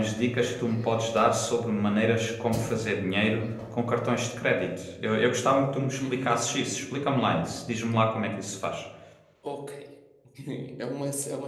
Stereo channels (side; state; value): both; identical; correlation 1.00